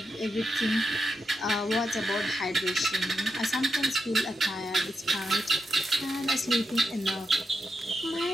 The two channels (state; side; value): normal; both; correlation 0.86